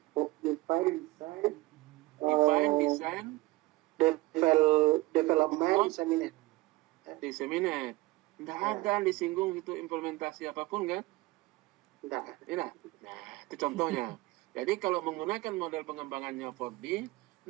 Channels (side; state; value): left; quieter; 20.1 dB